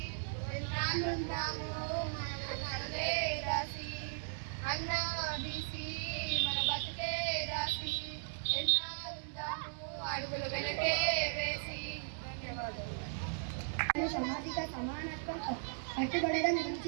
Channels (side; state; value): left; silent; 53 dB below the other